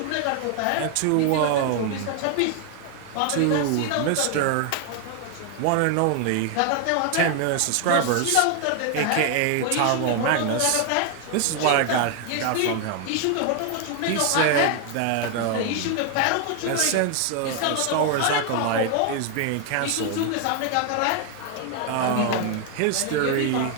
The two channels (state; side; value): different; both; correlation 0.00